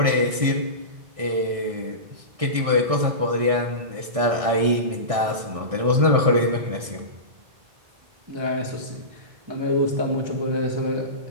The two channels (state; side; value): late; left; 1.6 ms